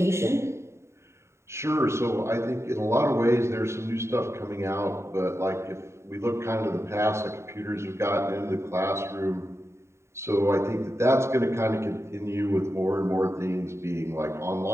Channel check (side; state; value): left; late; 0.13 ms